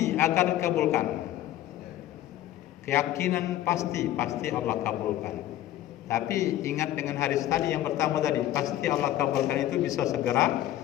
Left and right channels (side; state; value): right; quieter; 13.3 dB